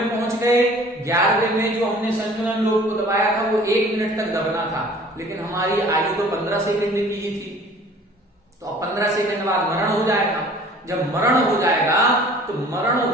पहुंच गए, 11वें में जो हमने संयोजन लोभ को दबाया था वो 1 मिनट तक दबना था, लेकिन हमारी आयु तो 15 सेकंड की ही थी, तो अब 15 सेकंड बाद मरण हो जाएगा। जब मरण हो जाएगा तो मरण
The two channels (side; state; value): both; normal; correlation 0.49